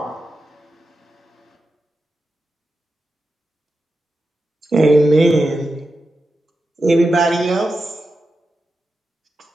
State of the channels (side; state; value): both; normal; correlation 0.90